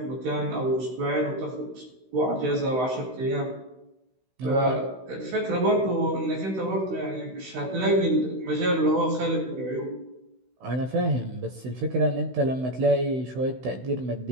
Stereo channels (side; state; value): left; late; 16 ms